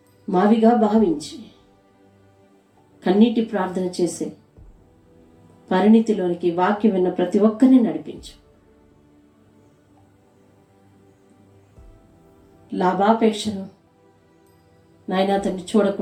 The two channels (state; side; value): identical; both; correlation 1.00